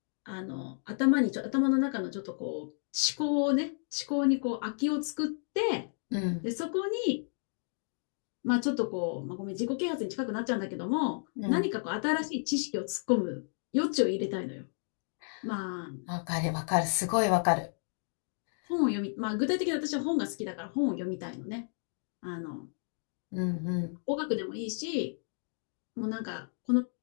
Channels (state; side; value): silent; right; digital silence